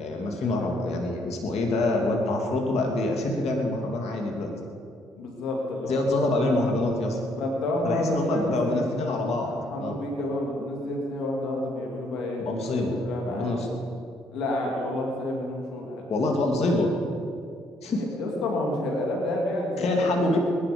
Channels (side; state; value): both; normal; correlation 0.69